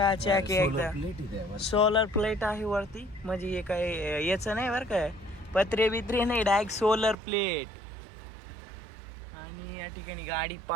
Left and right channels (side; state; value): left; drops out; at 7.2 s